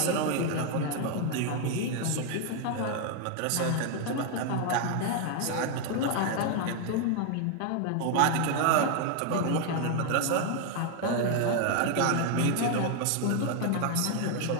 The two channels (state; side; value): different; both; correlation 0.00